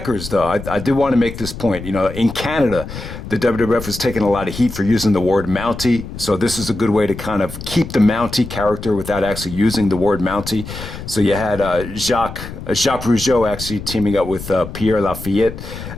though, I did want to make this point. You know, in Canada, the WWF was taking a lot of heat for using the word Mountie. So this is a good way to kind of keep the Mountie character without actually using the word Mountie. So you had Jacques Rougeau actually teaming up with Pierre Lafayette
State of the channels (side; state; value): left; noise; rumble, 10 dB below the sound